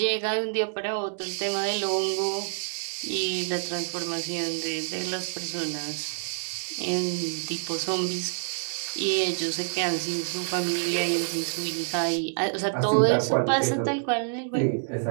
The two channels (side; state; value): left; silent; digital silence